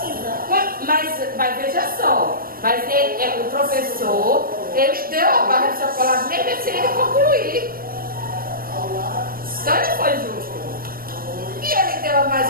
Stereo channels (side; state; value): left; late; 0.42 ms